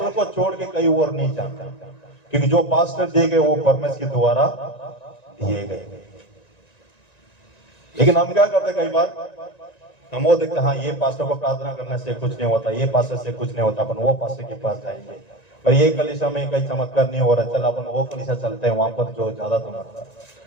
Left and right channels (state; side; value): late; right; 1.9 ms